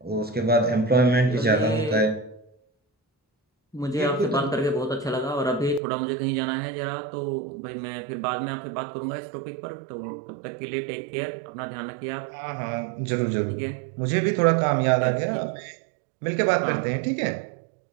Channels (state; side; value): drops out; left; at 5.8 s